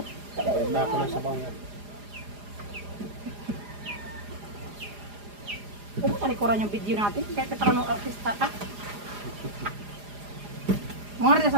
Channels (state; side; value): late; left; 4.9 ms